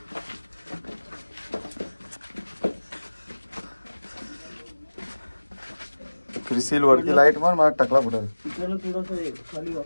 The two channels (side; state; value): both; inverted; correlation -1.00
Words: क्रिसिल वरती लाईट मार, मला टकला फुटेल.